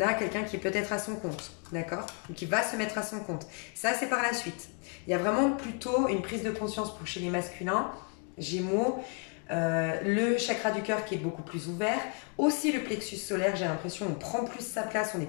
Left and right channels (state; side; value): quieter; right; 38.2 dB